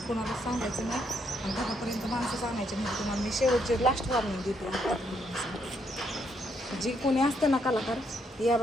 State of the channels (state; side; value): normal; both; correlation 0.74